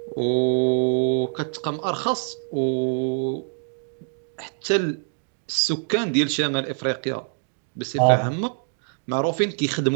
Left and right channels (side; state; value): left; silent; digital silence